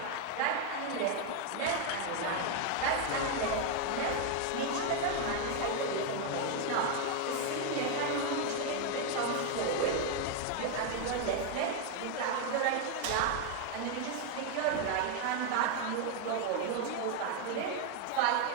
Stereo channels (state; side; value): different; both; correlation 0.01